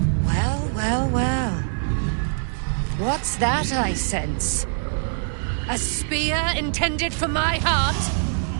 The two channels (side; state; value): left; silent; digital silence